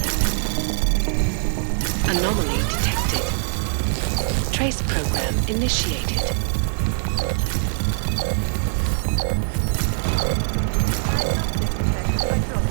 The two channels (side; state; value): left; silent; digital silence